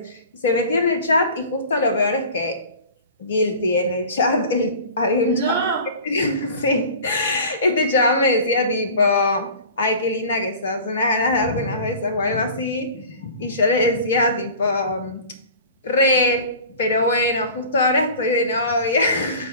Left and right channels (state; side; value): inverted; both; correlation -0.41